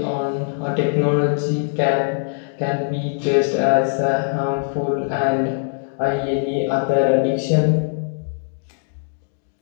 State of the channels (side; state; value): right; silent; 65 dB below the other